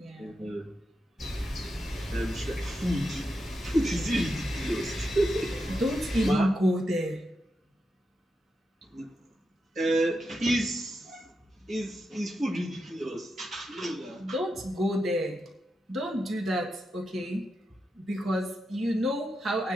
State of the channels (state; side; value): normal; both; correlation 0.87